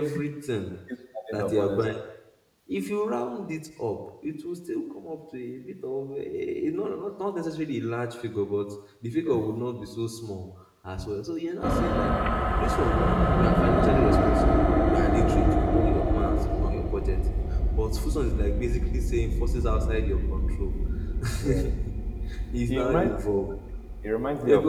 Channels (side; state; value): both; identical; correlation 1.00